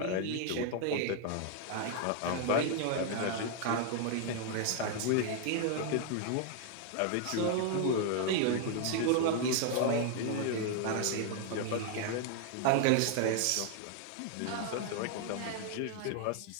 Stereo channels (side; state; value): both; different; correlation 0.00